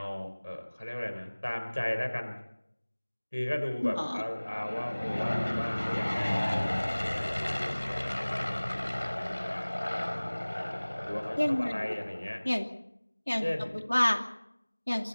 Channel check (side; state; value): both; inverted; correlation -1.00